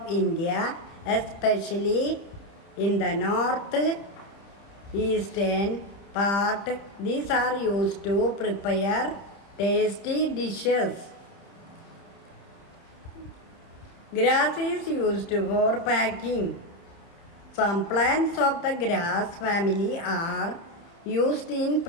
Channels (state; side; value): late; right; 30 ms